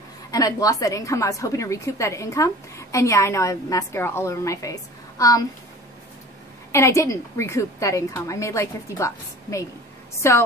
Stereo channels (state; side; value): normal; both; correlation 0.42